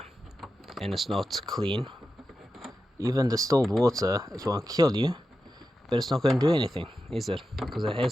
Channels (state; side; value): normal; both; correlation 0.91